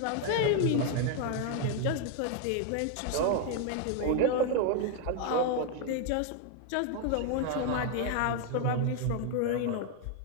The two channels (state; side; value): different; both; correlation 0.01